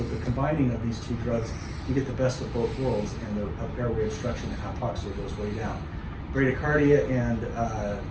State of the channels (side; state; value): both; identical; correlation 1.00